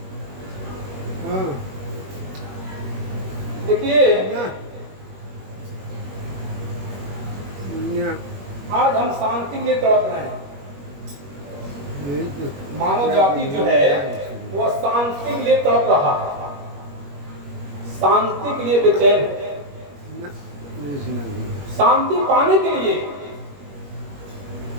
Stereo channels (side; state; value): left; late; 21 ms